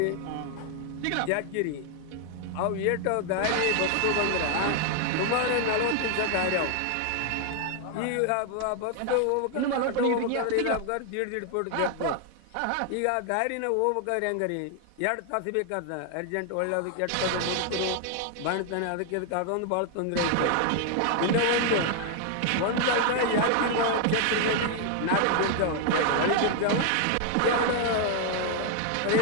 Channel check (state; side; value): different; both; correlation 0.00